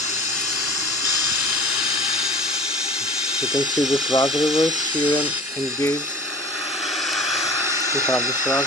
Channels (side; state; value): both; normal; correlation 0.42